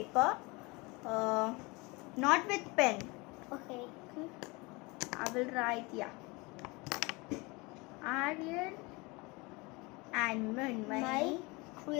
not with pen. Okay. I will write, yeah, Aryan and My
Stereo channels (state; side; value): quieter; right; 25.7 dB